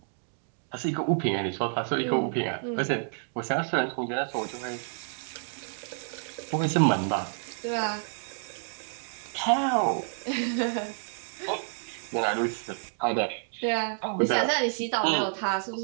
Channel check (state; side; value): silent; left; digital silence